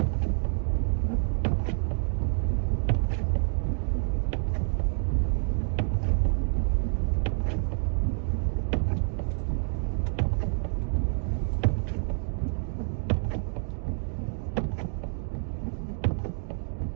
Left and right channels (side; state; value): left; silent; digital silence